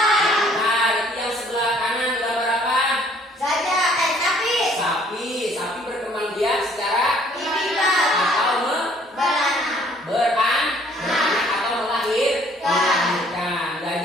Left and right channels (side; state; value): both; normal; correlation 0.60